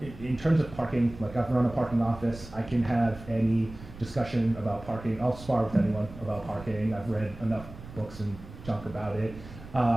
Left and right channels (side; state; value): right; noise; rumble, 16 dB below the sound